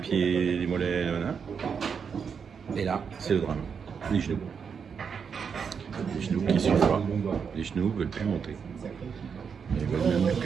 des mollets, et là c'est le drame, les genoux. Les genoux qui sont froids, les genoux veulent plus monter. Ils veulent même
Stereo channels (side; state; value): left; quieter; 6.4 dB